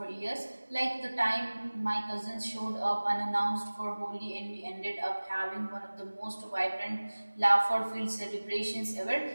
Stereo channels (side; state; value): both; inverted; correlation -1.00